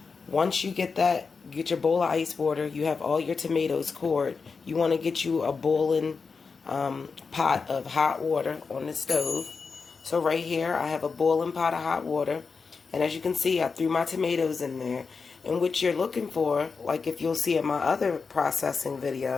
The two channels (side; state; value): right; quieter; 5.0 dB